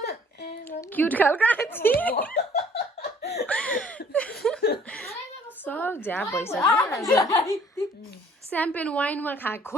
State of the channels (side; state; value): both; normal; correlation 0.57